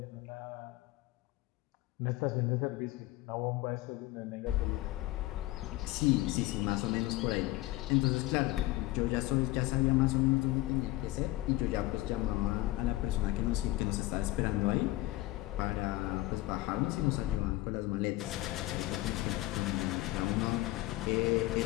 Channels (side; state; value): right; quieter; 18.1 dB